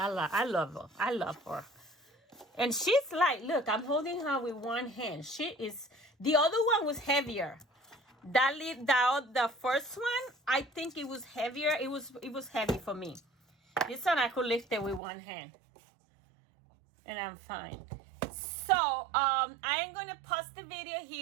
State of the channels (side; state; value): left; drops out; at 15.0 s